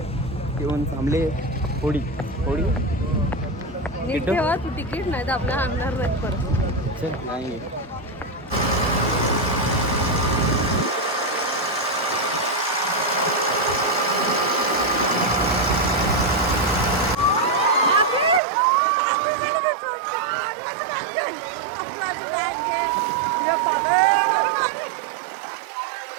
येऊन थांबले होडी होडी. नीट ठेवा तू, तिकीट नाही तर आपल्या आणणार नाही परत. नाही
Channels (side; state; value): left; drops out; at 18.4 s